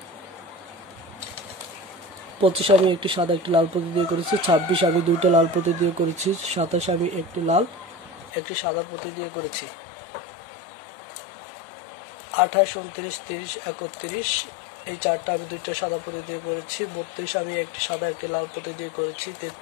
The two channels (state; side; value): drops out; right; at 8.3 s